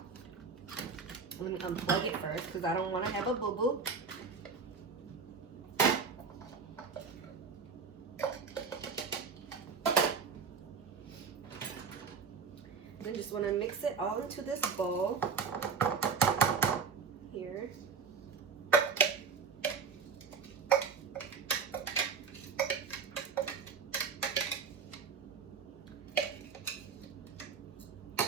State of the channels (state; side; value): quieter; left; 5.6 dB